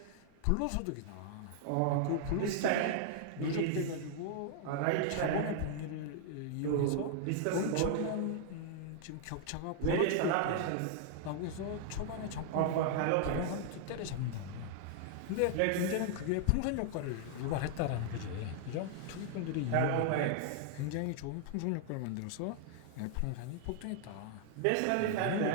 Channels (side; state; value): both; different; correlation 0.00